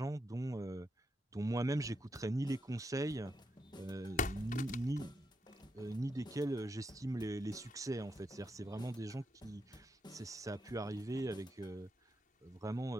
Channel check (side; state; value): both; normal; correlation 0.83